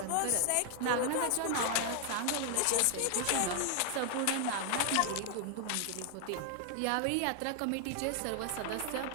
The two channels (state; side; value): different; both; correlation 0.00